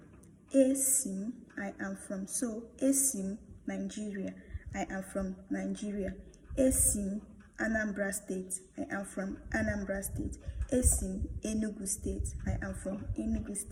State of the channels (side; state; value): both; identical; correlation 1.00